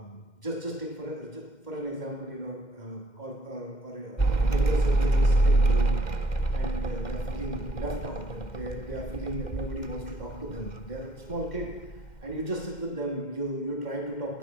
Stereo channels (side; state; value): right; late; 2.1 ms